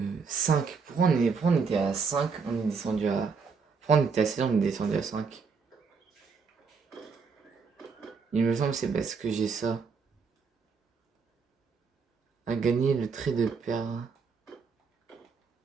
5. Pourquoi on était à 5? On est descendu à... Pourquoi on était à 7, on est descendu à 5? Il me semble que c'est parce que j'ai ça. À gagner le trait de perle.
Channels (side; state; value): left; quieter; 5.2 dB